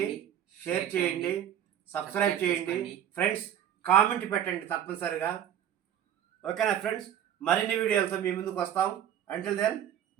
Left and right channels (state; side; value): quieter; left; 10.2 dB